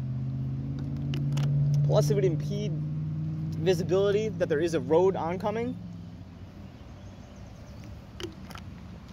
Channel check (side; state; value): both; identical; correlation 1.00